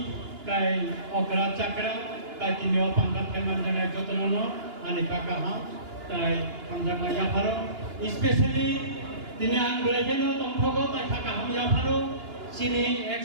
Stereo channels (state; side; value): late; left; 2.9 ms